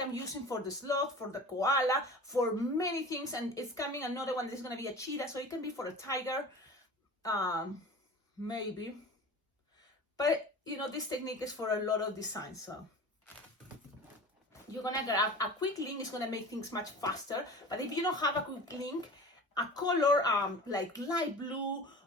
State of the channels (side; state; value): both; normal; correlation 0.37